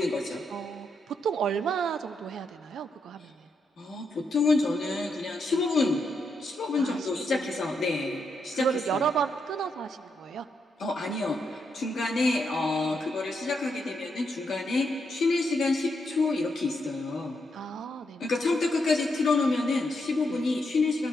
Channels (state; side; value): normal; both; correlation 0.81